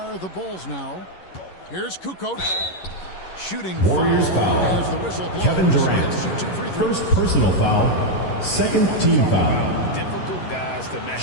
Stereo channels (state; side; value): late; right; 11 ms